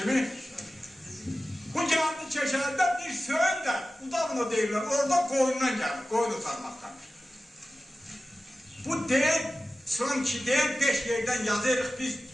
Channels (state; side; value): normal; both; correlation 0.95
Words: Bu gəldi Keşərdə bir Söyün də, Udavno deyirlər, orada qoyundan gəldi, qoyun utanmaqdan. Bu deyil, son ki deyil, 5 yerdən yazırıq biz